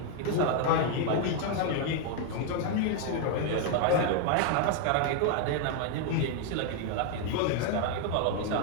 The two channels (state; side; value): different; both; correlation 0.00